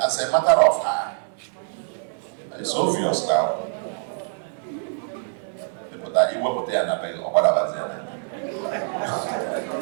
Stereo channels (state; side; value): silent; left; digital silence